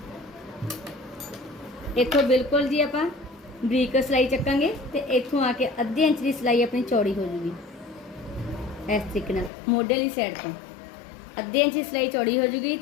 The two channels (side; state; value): right; drops out; at 9.5 s